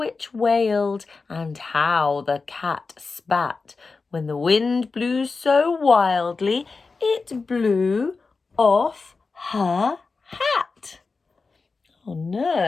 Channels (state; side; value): quieter; right; 4.3 dB